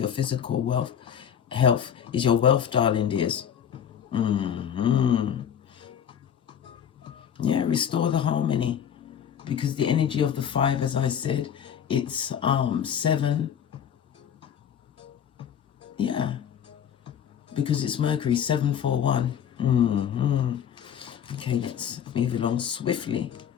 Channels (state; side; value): quieter; right; 8.7 dB